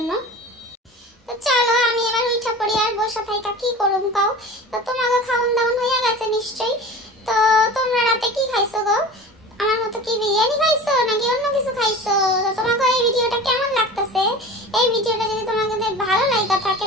তো চলো আমি এবার উঠা পড়ি, আর বসে থাইকা কি করুম কাও। তো তোমাকে খাওন দাওন হয়ে গেছে নিশ্চয়ই। তো তোমরা রাতে কি খাইছো গো? আমার মতো কি বিরিয়ানি খাইছো নাকি অন্য কিছু খাইছো? তো তোমাকে এই ভিডিওটা কেমন লাগতেছে? এই ভিডিওটা যদি তোমাদের ভালো লাগা থাকে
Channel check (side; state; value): both; normal; correlation 0.37